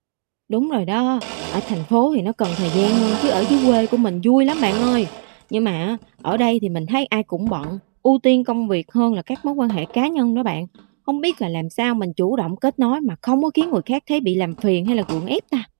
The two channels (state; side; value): silent; left; 66 dB below the other